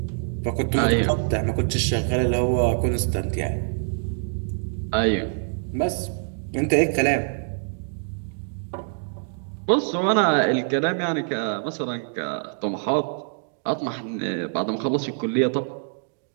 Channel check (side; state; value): left; silent; digital silence